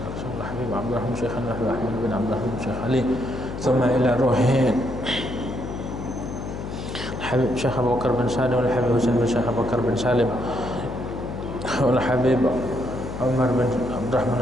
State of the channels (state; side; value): noise; left; hum, 7 dB below the sound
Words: الحبيب عبد الرحمن شيخنا الحبيب أحمد بن عبد الرحمن شيخ علي ثم إلى روح الحبيب شيخ أبو بكر بن سالم والحبيب حسين بن شيخ أبو بكر بن سالم والحبيب عمر بن عبد الرحمن